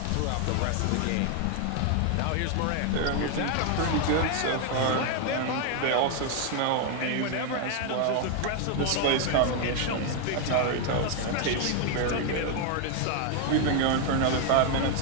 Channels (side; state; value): both; different; correlation 0.01